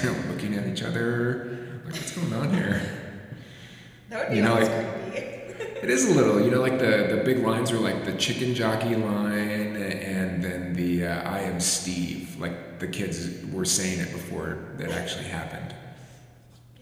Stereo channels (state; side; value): identical; both; correlation 1.00